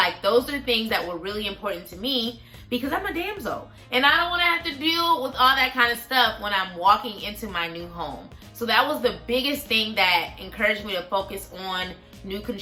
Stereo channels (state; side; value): identical; both; correlation 1.00